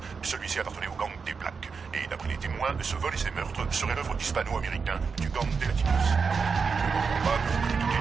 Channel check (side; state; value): left; quieter; 5.3 dB